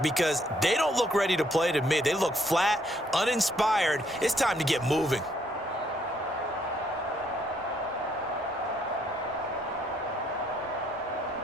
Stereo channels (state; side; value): normal; both; correlation 0.69